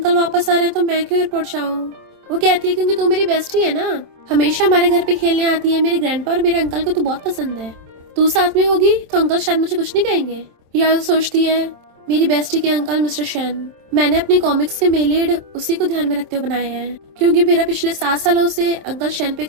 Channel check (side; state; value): left; late; 27 ms